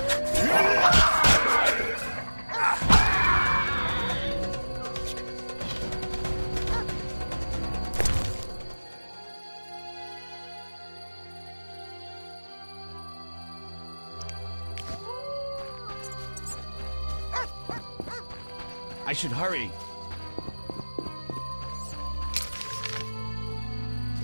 I should hurry.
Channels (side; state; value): both; inverted; correlation -1.00